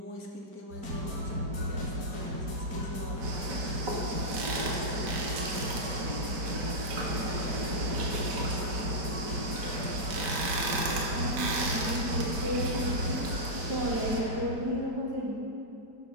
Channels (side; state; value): left; late; 5.2 ms